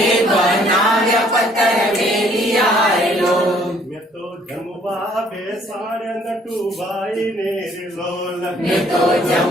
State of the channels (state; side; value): normal; both; correlation 0.61